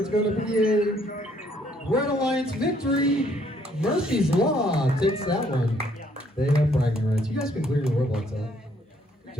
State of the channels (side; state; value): both; normal; correlation 0.66